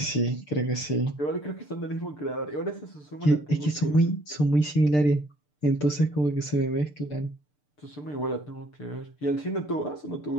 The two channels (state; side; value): late; right; 6.7 ms